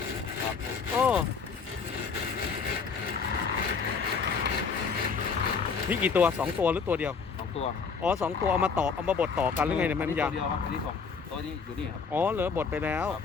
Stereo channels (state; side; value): quieter; right; 5.5 dB